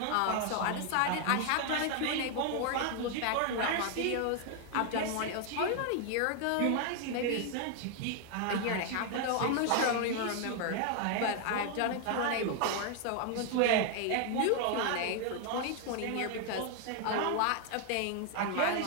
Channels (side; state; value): both; different; correlation 0.00